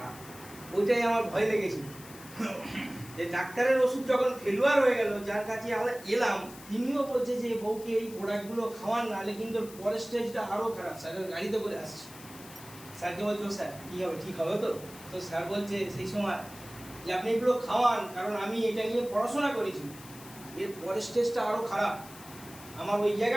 ওইটাই আমার ভয় লেগেছিল যে ডাক্তারের ওষুধ যখন ফেলুয়ার হয়ে গেল, যার কাছে আমরা এলাম তিনিও বলছে যে বউকে এই প্রোডাক্টগুলো খাওয়ান, নাহলে কিন্তু পরের স্টেজটা আরও খারাপ। স্যারের গাড়িতে করে আসছে, স্যারকে বলছো স্যার কী হবে, ঠিক হবে তো? তো স্যার বলছে সেই সময় যে আপনি এগুলো খাওয়ান, কারণ আমি এটা নিয়ে পড়াশোনা করেছি, এর পরের স্টেজটা আরও খারাপ। আমার ওই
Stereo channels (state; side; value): noise; left; hiss, 18 dB below the sound